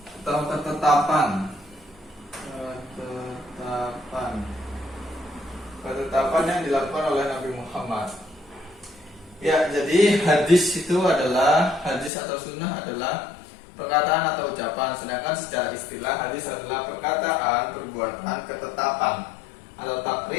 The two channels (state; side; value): drops out; right; at 12.1 s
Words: atau ketetapan yang dilakukan oleh Nabi Muhammad. Ya, jadi hadis itu adalah, hadis atau sunnah adalah perkataan atau ucapan. Sedangkan secara istilah hadis adalah perkataan, perbuatan, ketetapan atau